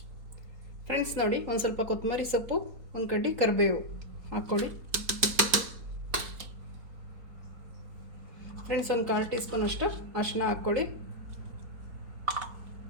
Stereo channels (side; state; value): left; late; 3.9 ms